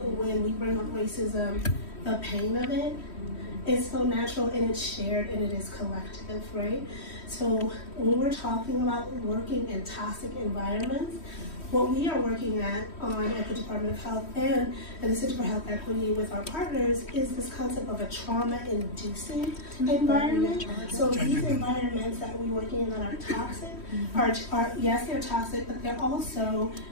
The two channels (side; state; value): right; late; 3.1 ms